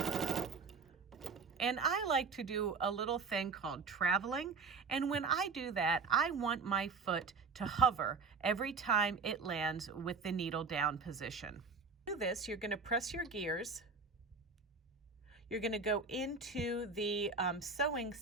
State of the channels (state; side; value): quieter; left; 4.7 dB